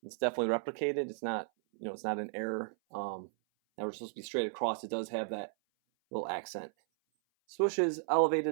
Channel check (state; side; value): silent; left; 55 dB below the other